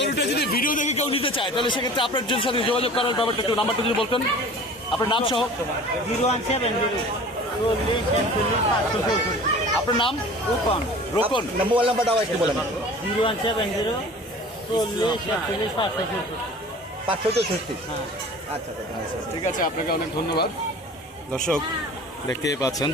যদি ভিডিও দেখে কেউ নিতে চায় তাহলে সেক্ষেত্রে আপনার জন্য সাথে যোগাযোগ করার ব্যাপারটা একটু নাম্বারটা যদি বলতেন, আপনার নাম সহ। 0170 40 41 564। আপনার নাম? রোকন। মোবাইল নাম্বারটাও একটু বলেন। 0170 40 41 564। 564। হ্যাঁ। আচ্ছা আচ্ছা। ঠিক আছে, আপনাকে অনেক ধন্যবাদ। দর্শক দেখতেই পাচ্ছেন,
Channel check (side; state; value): both; normal; correlation 0.43